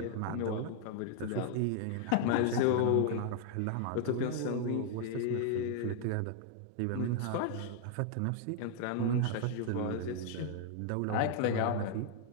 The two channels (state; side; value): different; both; correlation 0.00